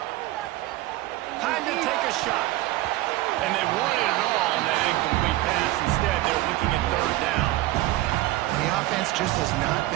Time to take a shot. And they wanted it all on that incomplete pass. Instead, they're looking at 3rd down. The offense just has not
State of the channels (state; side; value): quieter; left; 17.1 dB